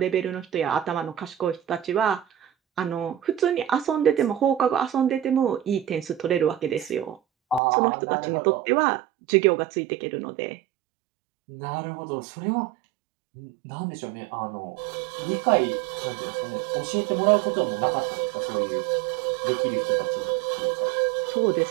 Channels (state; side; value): drops out; left; at 7.6 s